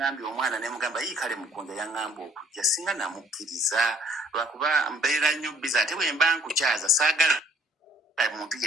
omwana ne mugamba kale Mukunja yaŋŋamba okujja, singa namukkiriza lwakuba mbeera nnyo busy. Ate bwe mba nkukyaza saagala muntu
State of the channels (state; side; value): normal; both; correlation 0.59